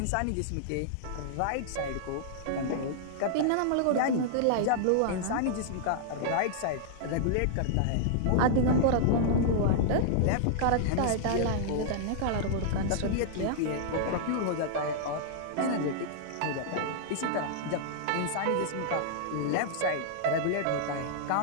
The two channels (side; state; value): both; different; correlation -0.01